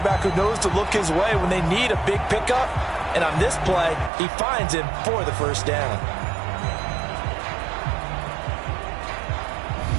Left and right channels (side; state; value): left; drops out; at 4.1 s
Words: who knows to look his way when they need a big pickup. And on this play, he finds him for the 1st down.